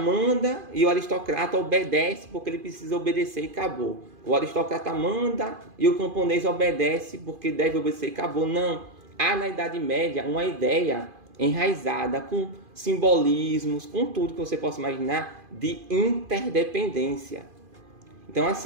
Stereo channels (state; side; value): late; left; 2.5 ms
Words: e o aristocrata obedece porque ele precisa obedecer e acabou. O aristocrata manda e o camponês obedece porque deve obedecer e acabou. Não. Há na Idade Média uma ideia enraizada com simbolismos, com tudo que você possa imaginar, de interdependência. Então,